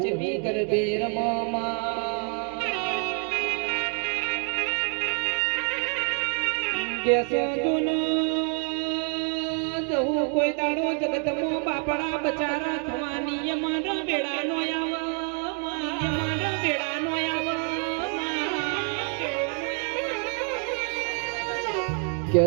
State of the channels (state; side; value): quieter; left; 39.4 dB